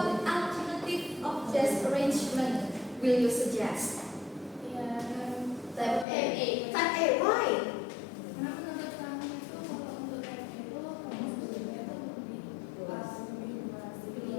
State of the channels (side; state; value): right; drops out; at 6.1 s